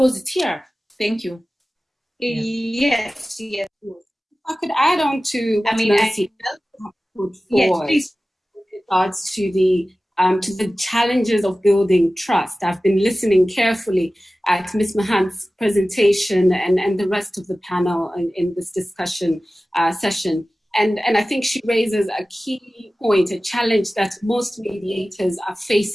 it's here. Thank you. Yes. I could add on to what Mercy put forward with regards to the challenges of building trust. I've been listening carefully at Ms. Mahant's presentation and the rest of the panel in this discussion session. And I think she raises a key point, a challenge that most mediators are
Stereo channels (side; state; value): both; normal; correlation 0.96